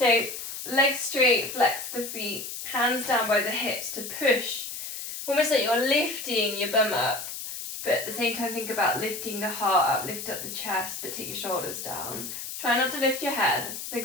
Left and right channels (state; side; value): noise; left; hiss, 7 dB below the sound